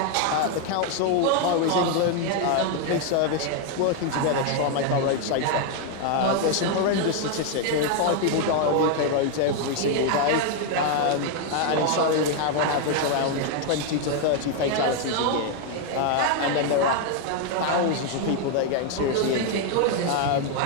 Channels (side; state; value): both; different; correlation 0.00